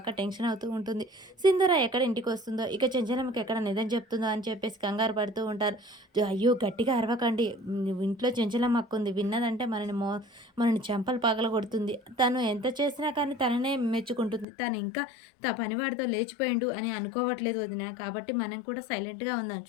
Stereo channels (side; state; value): right; drops out; at 14.5 s